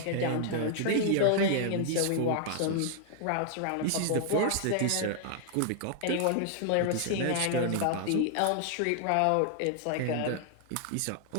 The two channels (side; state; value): both; different; correlation 0.00